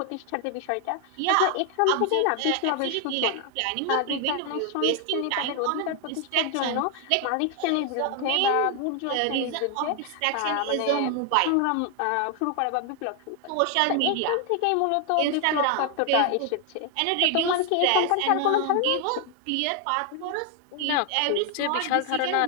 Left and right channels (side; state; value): both; different; correlation 0.00